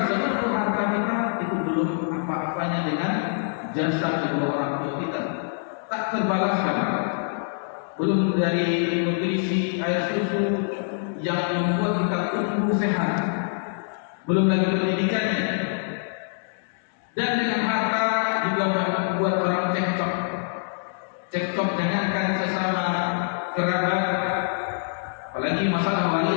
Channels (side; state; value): right; silent; digital silence